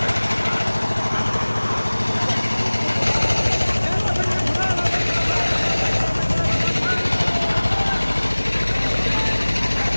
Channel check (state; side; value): inverted; both; correlation -1.00